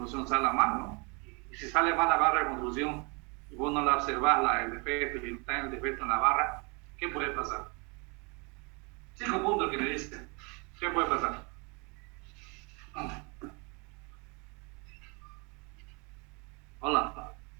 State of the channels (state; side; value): quieter; left; 31.7 dB